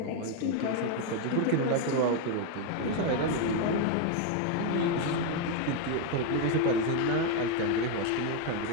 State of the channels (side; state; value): both; different; correlation 0.01